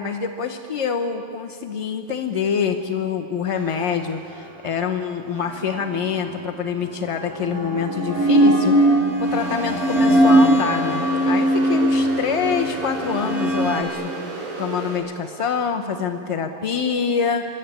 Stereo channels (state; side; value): late; left; 11 ms